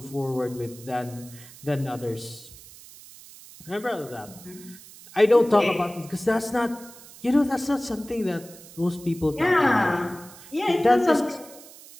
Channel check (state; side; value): noise; right; hiss, 19 dB below the sound